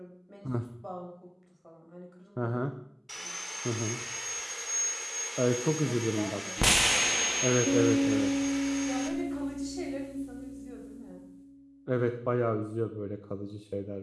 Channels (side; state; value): both; identical; correlation 1.00